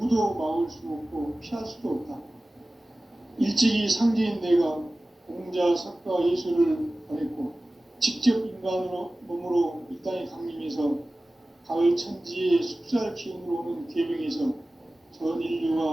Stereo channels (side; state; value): both; normal; correlation 0.97